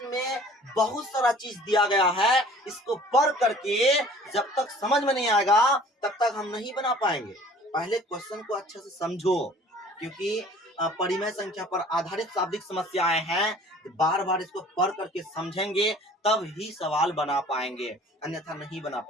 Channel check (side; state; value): both; normal; correlation 0.50